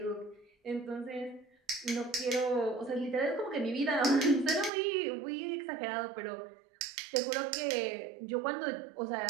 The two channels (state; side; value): drops out; left; at 4.7 s